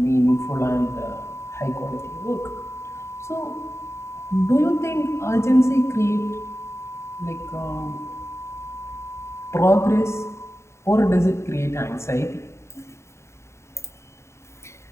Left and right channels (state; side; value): late; right; 0.13 ms